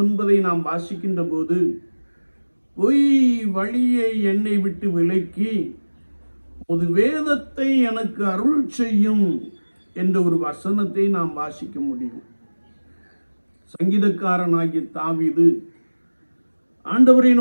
நாம் வாசிக்கின்ற போது, பொய் வழியை என்னை விட்டு விலக்கி ஒரு வேதத்தை எனக்கு அருள் செய்யும் என்ற ஒரு வசனத்தை நாம் வாசிக்க முடியும். சங்கீதக்காரனாகிய தாவீது ஆண்டவரை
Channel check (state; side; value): inverted; both; correlation -1.00